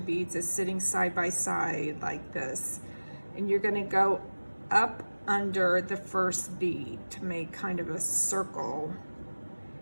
as sitting side by side like this, and you're going to go up under the first bead to make kind of a circle,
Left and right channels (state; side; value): inverted; both; correlation -1.00